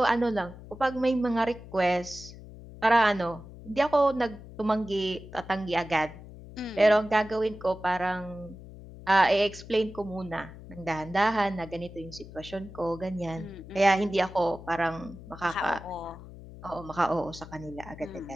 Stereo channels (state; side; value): noise; left; hum, 16 dB below the sound